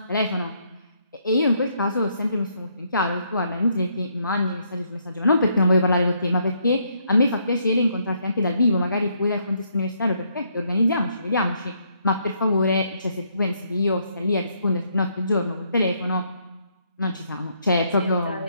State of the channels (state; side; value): inverted; both; correlation -0.72